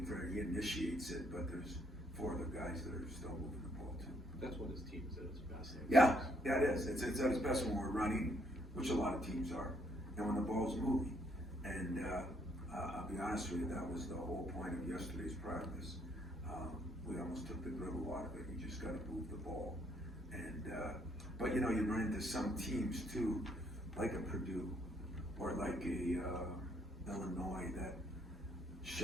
for. He initiates it, but there's 4 other guys that are still moving the ball too. that's what his team is at its best. Yeah, it is. It's at its best when we're running, which a lot of teams are, and when the ball's moving. And I'll be honest with you, that was the whole point of yesterday's practice. We almost took the dribble out of it. You just got to move the ball. And but you know, you run into some teams too, like a Purdue or like a Illinois that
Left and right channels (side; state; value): both; normal; correlation 0.69